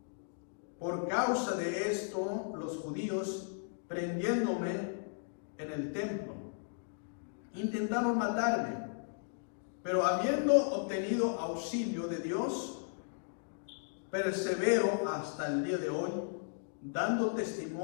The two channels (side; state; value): right; silent; digital silence